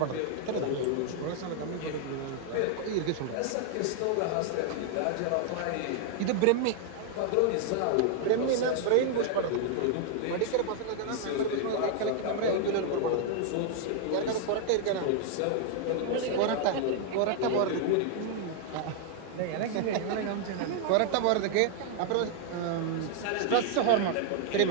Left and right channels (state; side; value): different; both; correlation 0.00